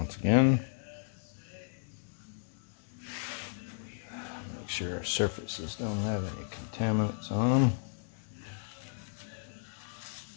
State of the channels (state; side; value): silent; right; digital silence